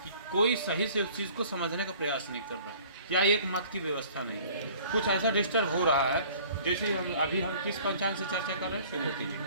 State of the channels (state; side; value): inverted; both; correlation -0.51